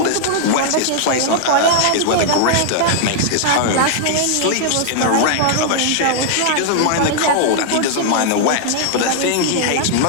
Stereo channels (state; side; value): different; both; correlation 0.00